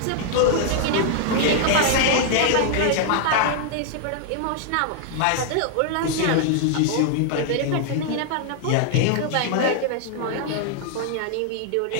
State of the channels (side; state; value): both; different; correlation -0.01